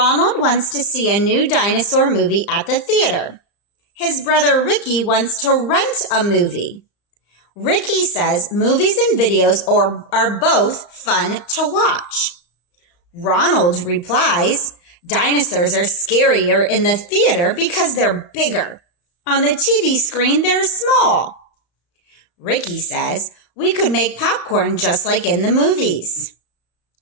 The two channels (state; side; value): late; right; 34 ms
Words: wants to see a new dinosaur movie at the theater. His brother Ricky wants to rent a movie. Ricky says movies and videos are both fun to watch. Ronald replies, dinosaurs are scarier in the theater because they're bigger. On the TV screen, they're small. Ricky says, we could make popcorn just like in the movies.